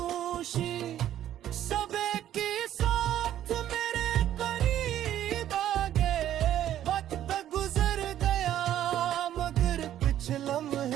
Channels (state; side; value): quieter; left; 11.7 dB